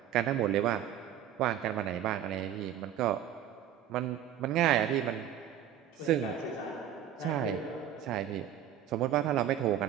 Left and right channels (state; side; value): quieter; left; 10.3 dB